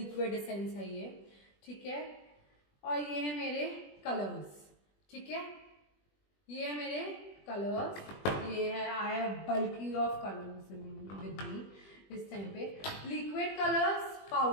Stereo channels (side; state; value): right; late; 20 ms